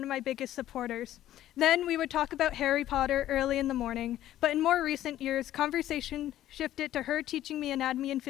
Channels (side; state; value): right; quieter; 13.1 dB